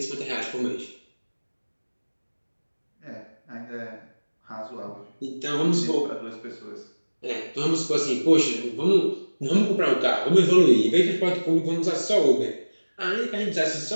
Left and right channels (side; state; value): both; inverted; correlation -1.00